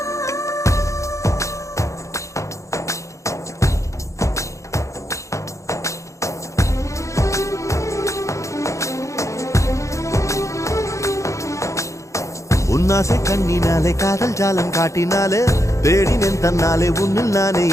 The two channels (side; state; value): right; late; 0.15 ms